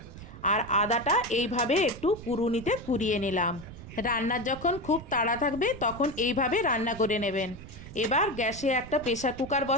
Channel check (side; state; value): right; noise; rumble, 14 dB below the sound